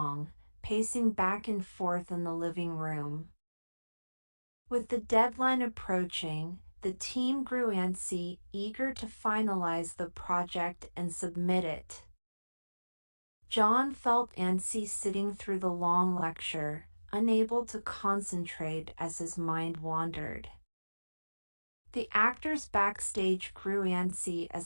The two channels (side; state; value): both; inverted; correlation -1.00